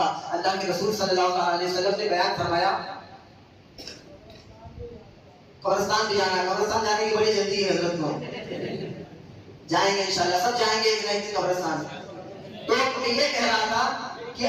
اللہ کے رسول صلی اللہ علیہ وسلم نے بیان فرمایا قبرستان بھی جانا ہے. قبرستان جانے کی بڑی جلدی ہے حضرت کو، جائیں گے انشاءاللہ، سب جائیں گے ایک نہ ایک قبرستان. تو میں یہ کہہ رہا تھا کہ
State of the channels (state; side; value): identical; both; correlation 1.00